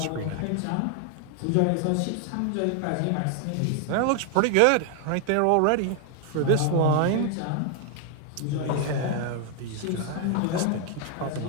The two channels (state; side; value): different; both; correlation 0.00